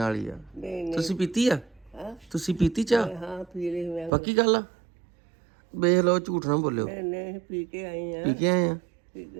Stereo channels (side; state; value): left; drops out; at 4.1 s